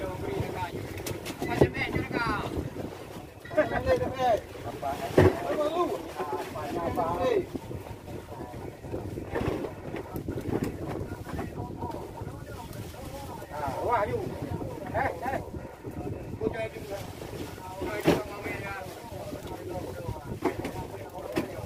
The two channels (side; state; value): both; identical; correlation 1.00